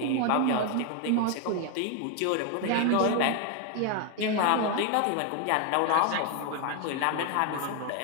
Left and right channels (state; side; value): different; both; correlation 0.01